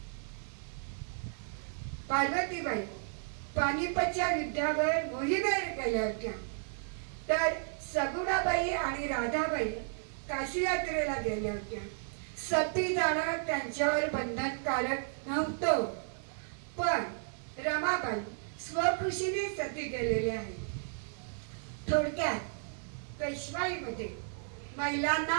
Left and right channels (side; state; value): left; silent; digital silence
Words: पार्वतीबाई पानिपतच्या युद्धावर मोहिमेवर गेल्या होत्या. तर सगुणाबाई आणि राधाबाई काशी यात्रेला गेल्या होत्या. सती जाणं त्यांच्यावर बंधनकारक नव्हतं, पण रमाबाई स्वखुशीने सती गेलेल्या आहेत. थोडक्यात पेशवाईमध्ये महिलांना